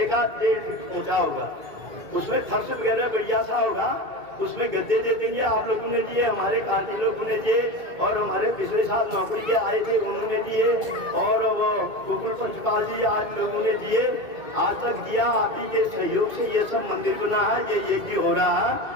फीट ऊंचा होगा। उसमें फर्श वगैरह बढ़िया सा होगा, उसमें गद्दे दे देंगे। आप लोगों ने दिए, हमारे कार्य लोगों ने दिए, और हमारे पिछले साल नौकरी के आए थे उन्होंने दिए, और वो गोकुल पंचपाल जी आज लोगों ने दिए, आज तक दिया। आप ही के सहयोग से ये सब मंदिर बना है, ये यज्ञ हो रहा है।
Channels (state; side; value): late; left; 2.3 ms